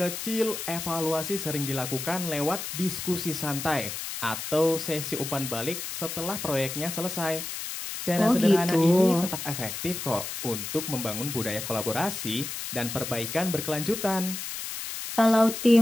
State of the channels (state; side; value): noise; left; hiss, 6 dB below the sound